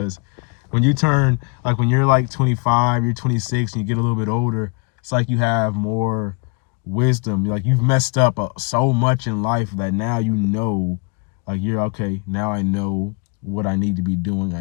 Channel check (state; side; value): quieter; right; 29.4 dB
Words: when you turn, like when you're like 25, you're 26, and you get a little bit older, it's like you have more wisdom. Like you've messed up so much in life that now like you're okay, now I know what I need to be doing.